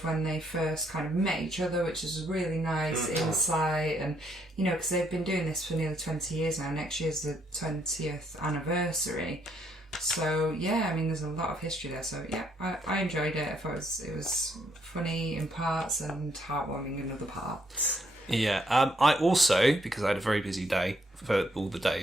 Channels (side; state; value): both; normal; correlation 0.72